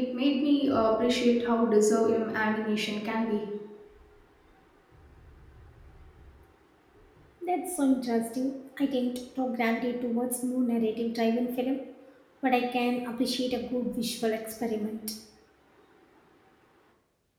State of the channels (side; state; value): both; identical; correlation 1.00